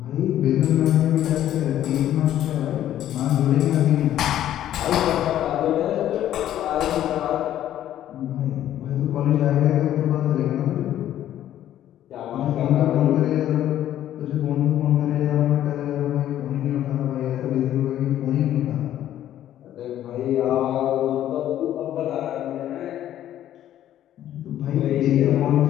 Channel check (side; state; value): right; quieter; 12.0 dB